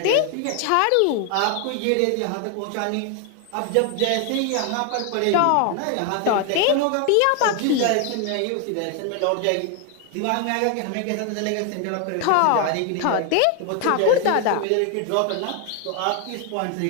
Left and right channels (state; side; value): different; both; correlation 0.01